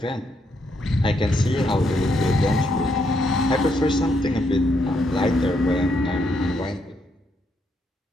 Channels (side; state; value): both; normal; correlation 0.76